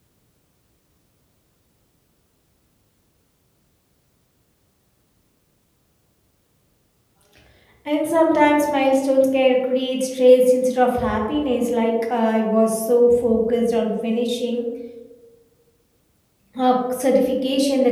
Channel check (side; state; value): both; identical; correlation 1.00